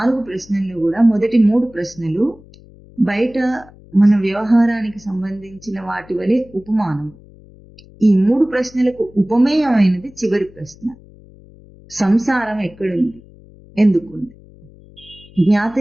ప్రశ్నలు కూడా, మొదటి 3 ప్రశ్నలు బయట మన వ్యవహారానికి సంబంధించిన వాటి వలె ఉపమానం. ఈ 3 ప్రశ్నలకు ఉపమేయమైనది చివరి ప్రశ్న. సంసారం ఎక్కడుంది? ఎందుకుంది?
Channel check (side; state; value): left; noise; hum, 24 dB below the sound